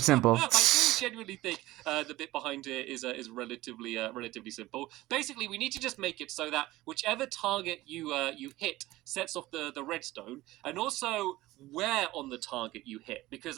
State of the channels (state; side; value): quieter; left; 17.8 dB